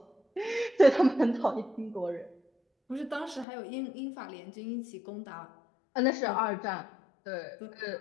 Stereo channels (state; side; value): drops out; right; at 3.5 s